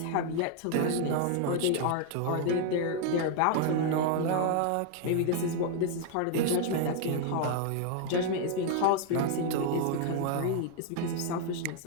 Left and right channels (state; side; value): different; both; correlation 0.00